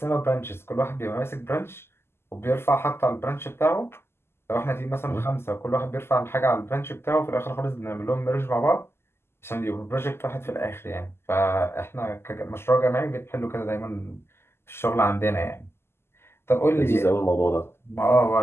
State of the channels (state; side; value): late; right; 0.12 ms